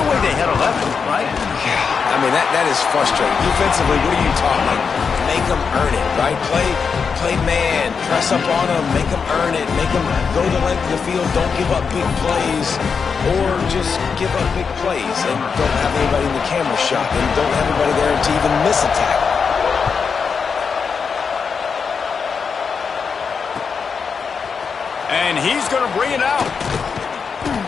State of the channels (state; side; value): quieter; right; 5.8 dB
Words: way they had 11, right? Yeah, I mean, that is frustrating. Defensively, what are you talking? Make them earn it, right? Play man, press up on them, make them earn it, make them go the length of the field, don't give up big plays, or just give up big plays and don't have anybody in the camera shot and don't have anybody there to even miss a tackle. And he's going to bring it out.